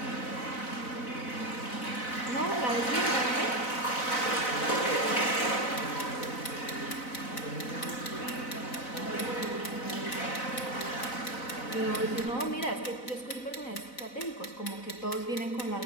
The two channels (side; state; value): right; late; 4.0 ms